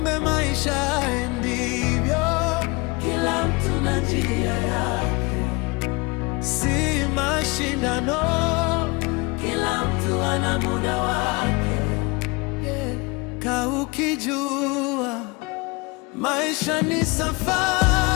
maisha ndivyo, kila mtu na njia yake, si mashindano, kila mtu ana muda wake. Ka ukijua maisha ni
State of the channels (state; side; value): quieter; right; 26.5 dB